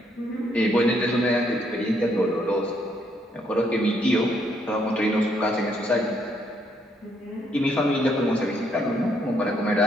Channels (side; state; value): both; normal; correlation 0.72